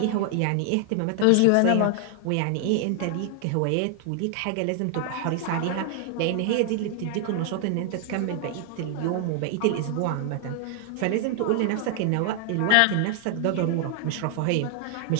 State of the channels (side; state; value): both; different; correlation 0.00